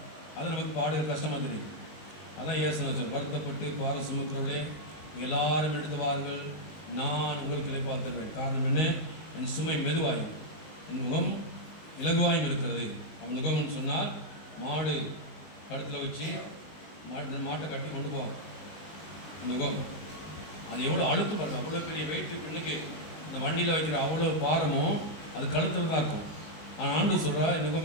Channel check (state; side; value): late; right; 19 ms